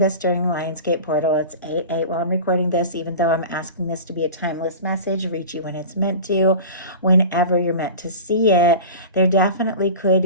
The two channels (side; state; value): both; inverted; correlation -0.34